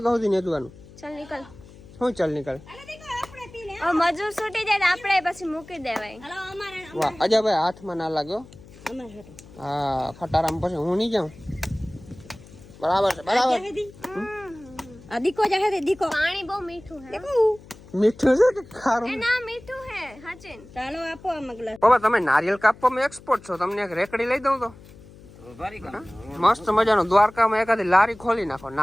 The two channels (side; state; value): left; noise; hum, 21 dB below the sound